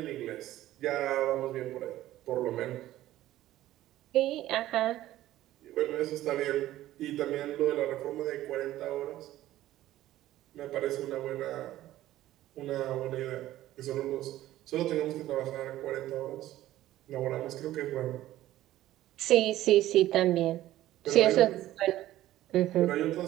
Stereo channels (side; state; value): left; quieter; 14.5 dB